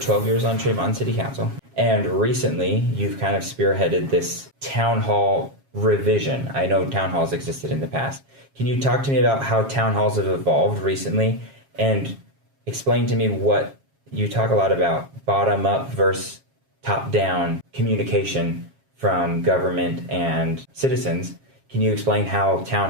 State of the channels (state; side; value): late; left; 7.4 ms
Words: years on Tremont City Council, and recently you've kind of spearheaded this town hall revision. I know town halls existed in the past. Can you talk to me about how town halls have evolved recently, and explain to me what you talk a lot about bottom up versus top down communication from government and citizens. Can you explain how town